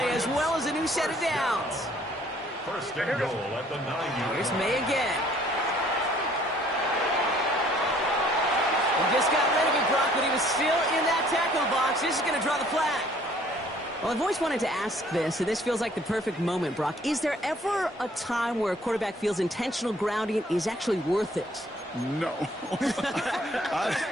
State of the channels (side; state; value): both; normal; correlation 0.59